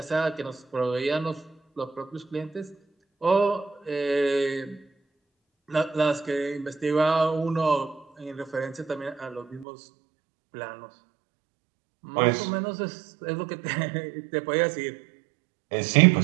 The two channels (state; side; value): drops out; left; at 9.7 s